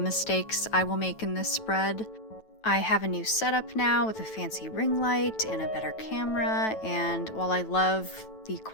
I will make in this spread. I have a new setup now with a fancy ring light and a better camera, and while I love the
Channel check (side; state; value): right; late; 9.1 ms